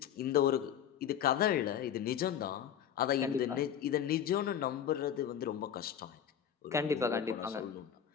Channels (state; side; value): quieter; right; 9.2 dB